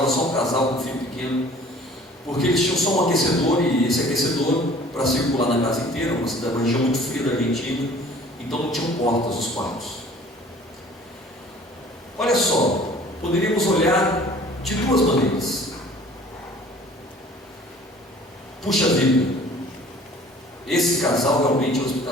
só um casal com um filho pequeno, porque eles tinham só um aquecedor, e esse aquecedor para circular na casa inteira, uma região muito fria da Argentina, então não tinham portas os quartos. Olha só, poderíamos olhar de duas maneiras. Puxa vida, esse casal realmente é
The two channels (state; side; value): normal; both; correlation 0.50